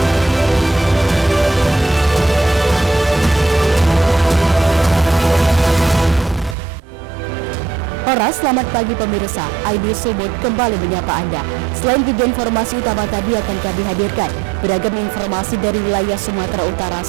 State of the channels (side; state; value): left; drops out; at 6.6 s